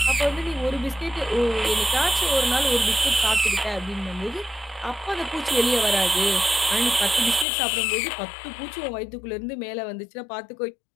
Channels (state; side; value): drops out; right; at 7.5 s